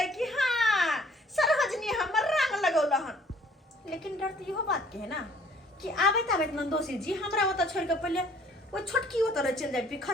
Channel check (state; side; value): normal; both; correlation 0.58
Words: कि हाँ सरहजनी हमर रंग लगौलहन। लेकिन डर तो इहो बात के है ना कि आबैत नंदोसी जी हमरा ओतऽ छोड़ के पहिले वो छोटकी ओतऽ चल जाए,